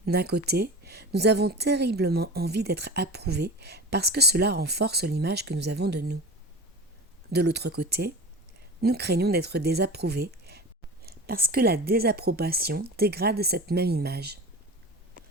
D'un côté, nous avons terriblement envie d'être approuvés parce que cela renforce l'image que nous avons de nous. De l'autre côté, nous craignons d'être désapprouvés parce que la désapprobation dégrade cette même image.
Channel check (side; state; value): both; normal; correlation 0.33